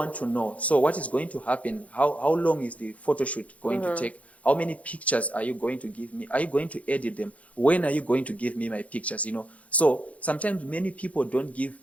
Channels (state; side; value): late; right; 0.066 ms